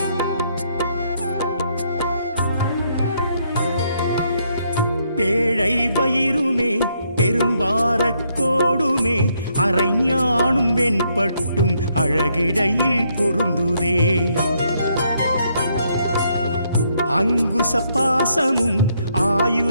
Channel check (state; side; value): inverted; both; correlation -0.73